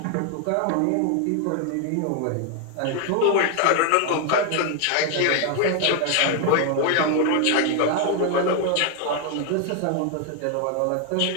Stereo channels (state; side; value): different; both; correlation 0.01